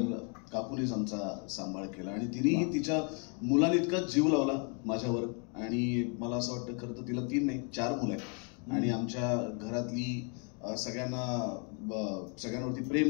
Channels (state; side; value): quieter; right; 38.4 dB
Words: काकूनेच आमचा सांभाळ केला आणि तिनेही तिच्या मुलांइतका जीव लावला माझ्यावर. आणि मला असं वाटतं खरं तर तिला 3 नाही 4 मुलं आहेत आणि आमच्या घरातली सगळ्यांवरती